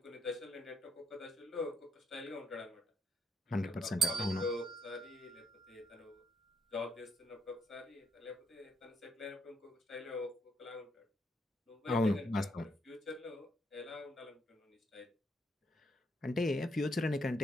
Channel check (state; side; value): normal; both; correlation 0.76